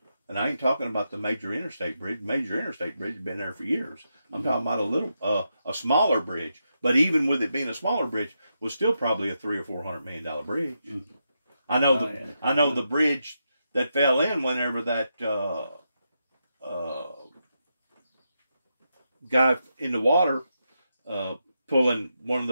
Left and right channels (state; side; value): inverted; both; correlation -0.85